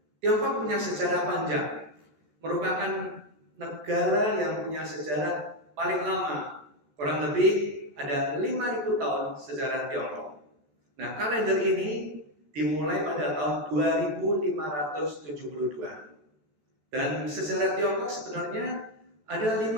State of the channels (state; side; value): late; left; 14 ms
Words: Tiongkok punya sejarah panjang, merupakan negara yang punya sejarah paling lama, kurang lebih ada 5.000 tahun sejarah Tiongkok. Nah, kalender ini dimulai pada tahun 2572. Dan sejarah Tiongkok sebenarnya ada